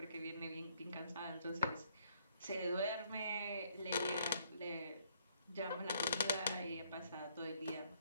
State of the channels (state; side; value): inverted; both; correlation -0.67